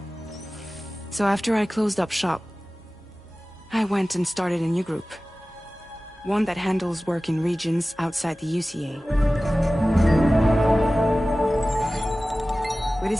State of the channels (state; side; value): normal; both; correlation 0.97